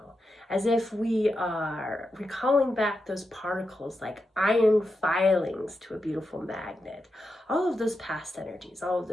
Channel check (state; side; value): normal; both; correlation 0.87